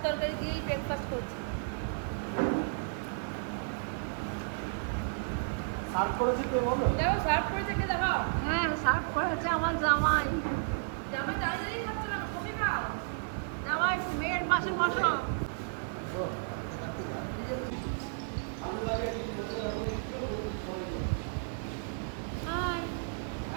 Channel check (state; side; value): silent; left; digital silence